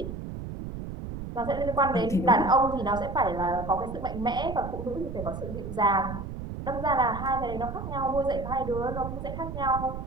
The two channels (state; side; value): noise; right; rumble, 7 dB below the sound